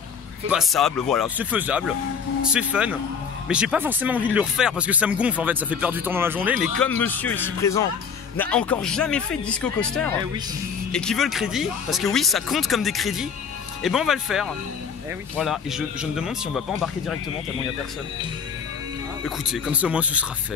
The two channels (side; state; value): right; quieter; 6.5 dB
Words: passable, voilà, c'est faisable, c'est fun. Mais j'ai pas forcément envie de le refaire parce que ça me gonfle en fait, ça fait perdre du temps dans la journée. Mais comme monsieur ici présent n'a encore jamais fait de disco coaster et qui veut le crédit, parce que oui ça compte comme des crédits, et ben on va le faire. Oui. Voilà, et je me demande si on va pas embarquer directement tellement il n'y a personne. Écoutez, comme ça au moins ce sera